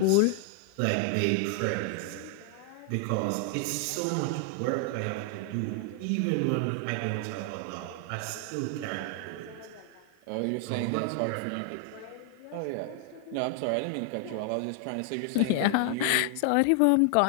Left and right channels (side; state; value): both; different; correlation 0.00